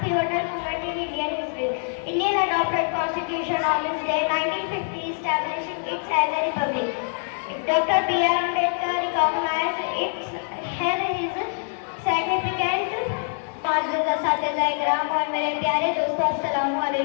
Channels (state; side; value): silent; right; 62 dB below the other